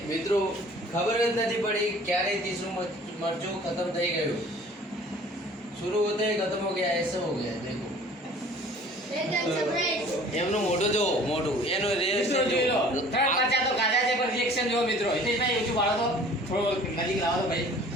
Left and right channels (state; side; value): normal; both; correlation 0.49